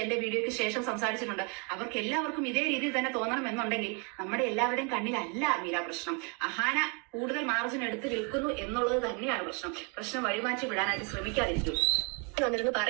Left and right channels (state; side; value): quieter; left; 34.5 dB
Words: എന്റെ വീഡിയോയ്ക്ക് ശേഷം സംസാരിച്ചിട്ടുണ്ട്. അവർക്ക് എല്ലാവർക്കും ഇതേ രീതിയിൽ തന്നെ തോന്നണം എന്നുണ്ടെങ്കിൽ നമ്മുടെ എല്ലാവരുടെയും കണ്ണിലല്ല മീര പ്രശ്നം. അഹാന കൂടുതൽ മാർജിൻ എടുത്ത് വിൽക്കുന്നു എന്നുള്ളത് തന്നെയാണ് പ്രശ്നം വഴിമാറ്റി വിടാനായിട്ട് ശ്രമിക്കാതിരിക്കും. വന്നിരുന്നു